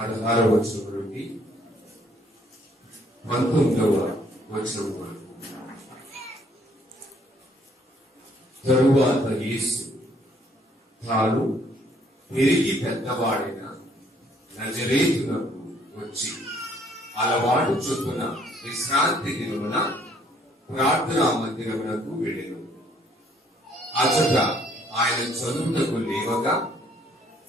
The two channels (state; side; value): normal; both; correlation 0.64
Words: వచనం నుండి 19వ వచనం వరకు. తరువాత యేసు తాను పెరిగి పెద్దవాడైన నజరేతునకు వచ్చి అలవాటు చొప్పున విశ్రాంతి దినమున ప్రార్థనా మందిరమునకు వెళ్ళెను. అచట ఆయన చదువుటకు లేవగా